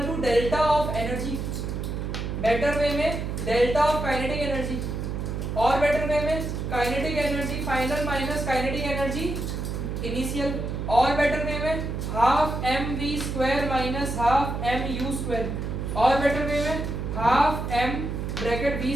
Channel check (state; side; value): noise; right; hum, 3 dB below the sound